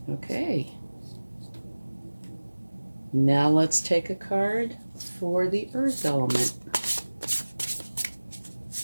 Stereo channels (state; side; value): inverted; both; correlation -1.00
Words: Okay. Now let's take a card for the earth element,